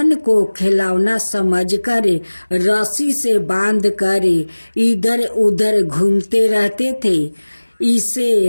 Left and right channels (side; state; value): both; inverted; correlation -1.00